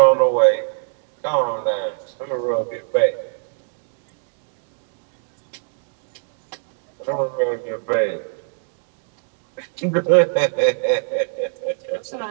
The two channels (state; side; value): silent; left; digital silence